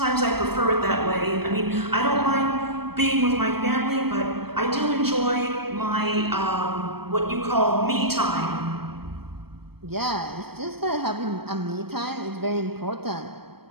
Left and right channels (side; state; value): left; late; 0.96 ms